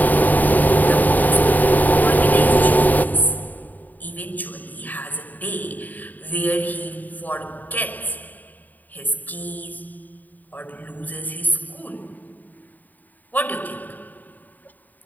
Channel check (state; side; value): late; right; 0.084 ms